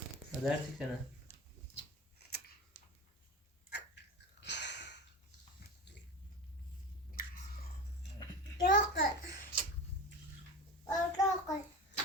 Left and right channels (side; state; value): both; normal; correlation 0.28